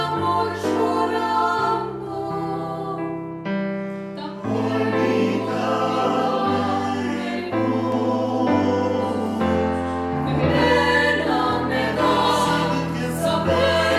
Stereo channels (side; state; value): both; identical; correlation 1.00